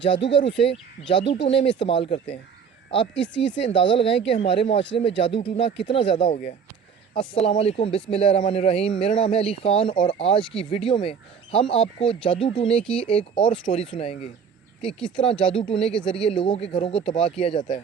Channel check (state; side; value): quieter; left; 6.7 dB